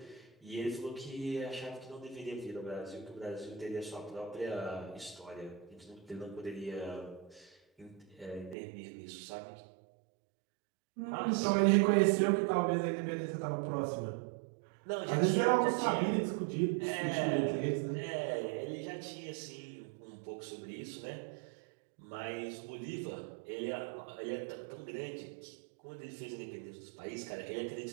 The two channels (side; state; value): left; drops out; at 8.6 s